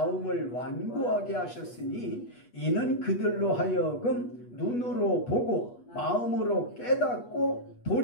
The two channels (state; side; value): late; right; 8.3 ms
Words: 완고하게 하셨으니 이는 그들로 하여금 눈으로 보고 마음으로 깨닫고